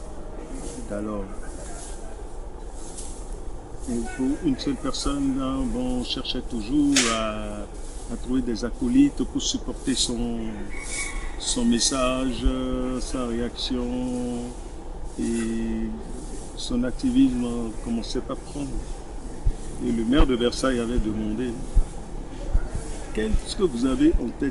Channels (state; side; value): identical; both; correlation 1.00